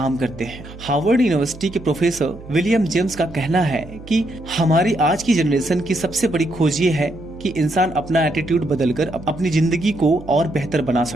करते हैं। हार्वर्ड यूनिवर्सिटी के प्रोफेसर विलियम जेम्स का कहना है कि हमारी आज की जनरेशन की सबसे बड़ी खोज ये है कि इंसान अपना एटीट्यूड बदलकर अपनी जिंदगी को और बेहतर बना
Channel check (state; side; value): noise; right; hum, 17 dB below the sound